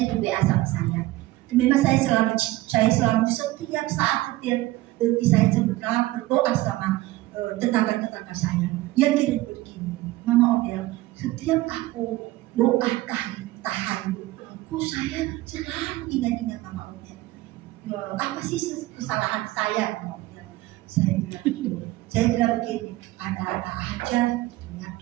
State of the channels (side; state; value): left; quieter; 18.0 dB